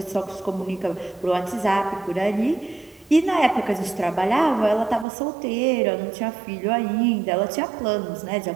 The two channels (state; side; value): drops out; left; at 5.1 s